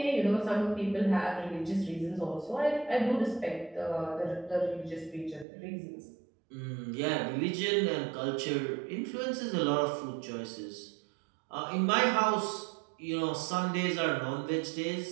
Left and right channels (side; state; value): left; drops out; at 5.5 s